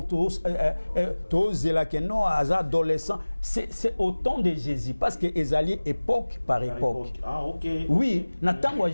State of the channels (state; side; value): inverted; both; correlation -1.00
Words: adolescent, c'est au temps de Jésus, parce que Ezali époque par époque. Ah, ok. Oui, natango